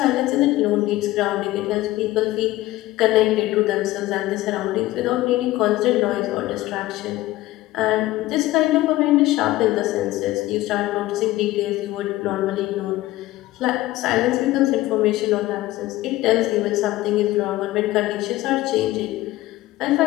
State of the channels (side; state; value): right; quieter; 16.9 dB